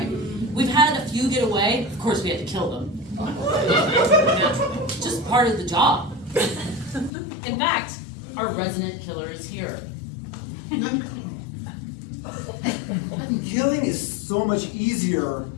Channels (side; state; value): right; drops out; at 7.1 s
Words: We've had a few get away. Of course, we had to kill them. Just part of the job. In fact, our resident killer is here. Killing is so much easier